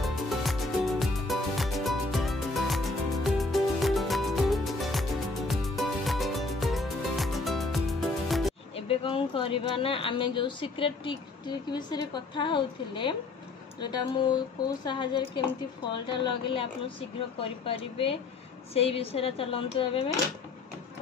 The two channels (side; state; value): right; quieter; 3.5 dB